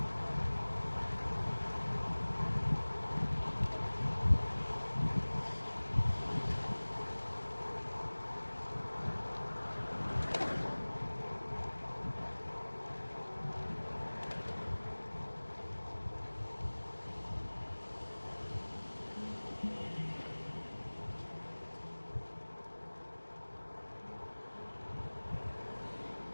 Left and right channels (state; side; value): inverted; both; correlation -1.00